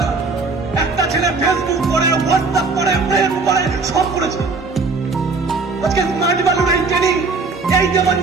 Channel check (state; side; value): quieter; left; 4.0 dB